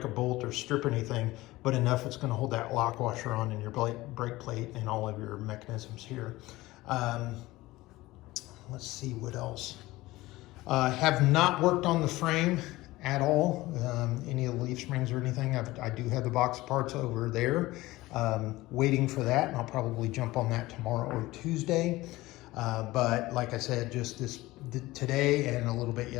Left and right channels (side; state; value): right; quieter; 18.8 dB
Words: a bolt or strip anything, but enough it's going to hold that lock washer on in your brake plate and all of your mechanisms here. Let's see what else. Have not worked on the frame at all, any of the leaf springs or anything. I do have the box of parts over there, waiting for that, and I'll probably jump on that tomorrow or Tuesday. But like I said, just today and a little bit